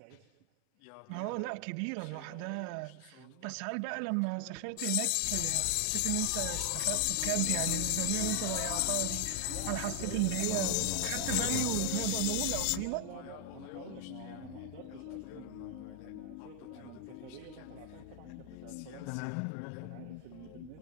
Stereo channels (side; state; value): both; different; correlation 0.00